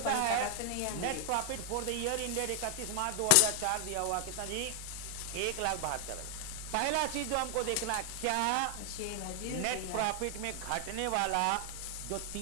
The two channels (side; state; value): both; different; correlation 0.00